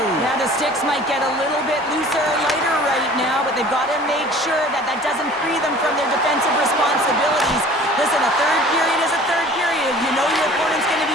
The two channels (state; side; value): normal; both; correlation 0.47